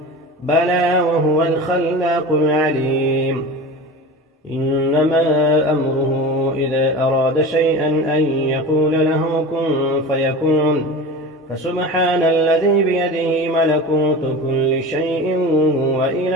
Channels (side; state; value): both; normal; correlation 0.32